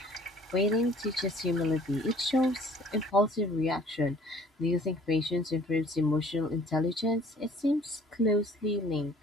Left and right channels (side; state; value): both; normal; correlation 0.54